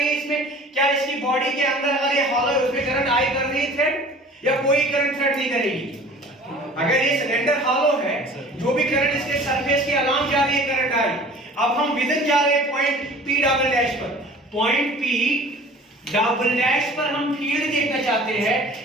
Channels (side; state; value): both; normal; correlation 0.45